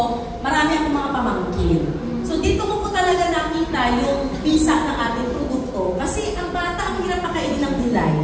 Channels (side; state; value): both; identical; correlation 1.00